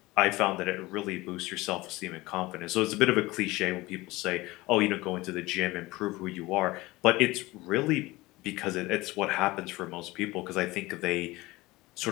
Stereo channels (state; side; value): quieter; right; 20.4 dB